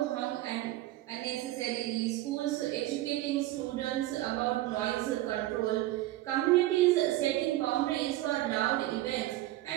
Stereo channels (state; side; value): quieter; left; 16.1 dB